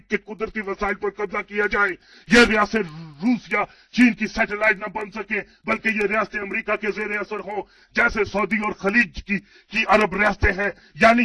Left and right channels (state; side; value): identical; both; correlation 1.00